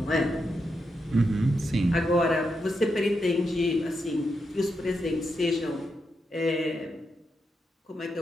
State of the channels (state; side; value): normal; both; correlation 0.85